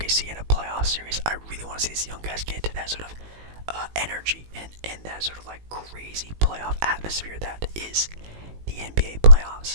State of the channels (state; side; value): late; left; 18 ms